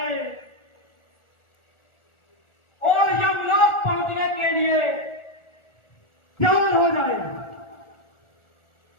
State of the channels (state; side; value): late; right; 1.4 ms